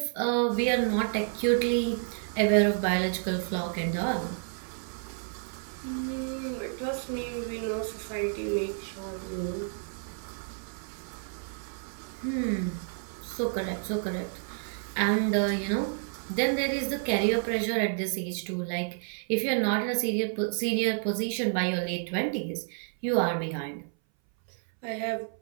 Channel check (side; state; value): left; silent; 58 dB below the other